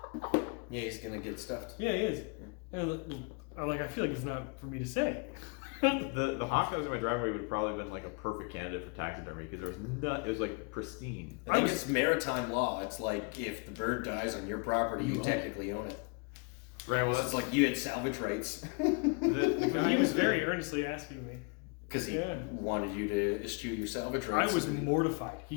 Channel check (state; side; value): quieter; right; 33.1 dB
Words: Yeah, he's gonna get stuffed. Yeah, he is. And I'm like, I feel like it's not for me to say. The hawk that was in my driveway would probably been like a perfect candidate for taxidermy because there was it was like pristine. I think it's maritime law. It's like if the bird dies on your property, you You own technically own it. Right. Well, It's that's like you had salvage rights the guy He was who's very earnestly asking me. because he Yeah. wanted you to eschew your salvage I rights. was mortified.